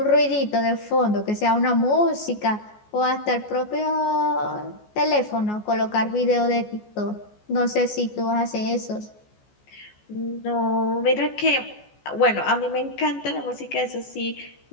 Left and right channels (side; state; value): right; late; 14 ms